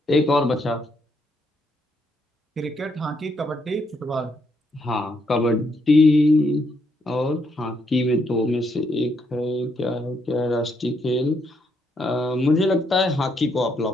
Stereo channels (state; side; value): normal; both; correlation 0.75